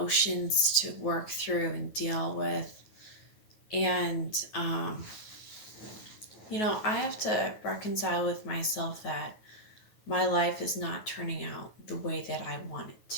to work through and deal with, and I have to reconcile with myself that my life is not turning out the way that I want it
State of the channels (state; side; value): late; right; 9.3 ms